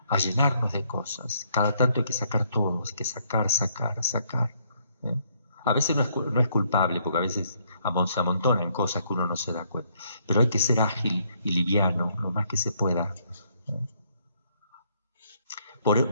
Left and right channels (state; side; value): inverted; both; correlation -0.70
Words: llenarnos de cosas. Cada tanto hay que sacar todo, hay que sacar. ¿Eh? A veces no es culpable, porque a veces se amontonan cosas que uno no se da cuenta. Pero hay que ser ágil y liviano, lo más que se pueda.